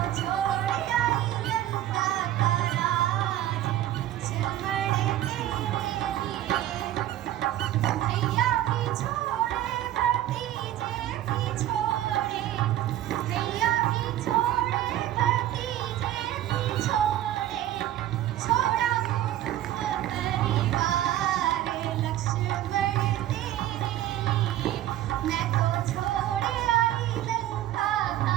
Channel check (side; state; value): left; quieter; 13.0 dB